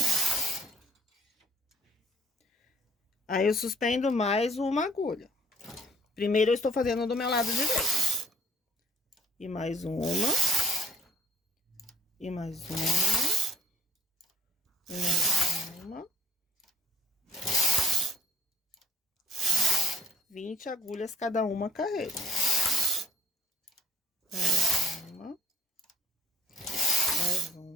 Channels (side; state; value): both; normal; correlation 0.58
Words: Aí, eu suspendo mais uma agulha. Primeiro, eu estou fazendo do meu lado direito. E mais uma. E mais uma. E mais uma. 20 agulhas cada uma carreira. Mais uma. Mais